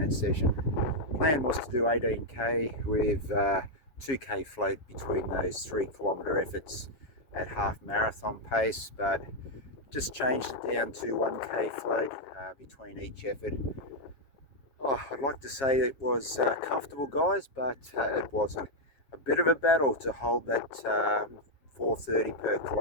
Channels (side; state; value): right; late; 7.4 ms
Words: session. Plan was to do 18k with 2k float between those 3 kilometre efforts at half marathon pace, but just changed it down to 1k float between each effort. I'd like to say it was comfortable, guys, but it wasn't. A bit of a battle to hold that 4:30 per